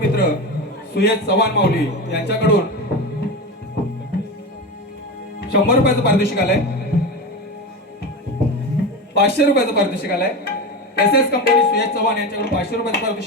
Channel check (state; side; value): normal; both; correlation 0.22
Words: सुयश चव्हाण माऊली यांच्याकडून 100 रुपयाचं पारितोषिक आलंय. 500 रुपयाचं पारितोषिक आलंय. एसएस कंपनी सुयश चव्हाण यांच्याकडून 500 रुपयाचं